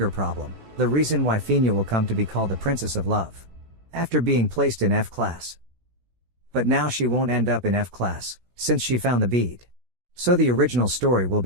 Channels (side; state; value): left; late; 16 ms